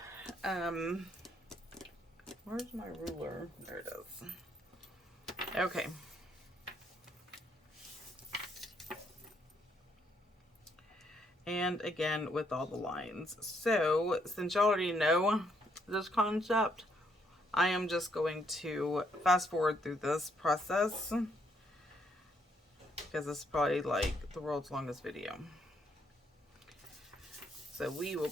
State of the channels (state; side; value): normal; both; correlation 0.72